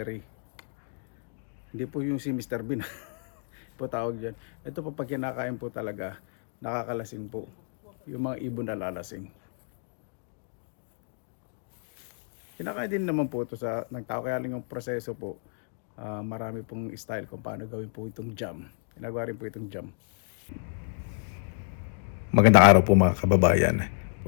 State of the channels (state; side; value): silent; right; digital silence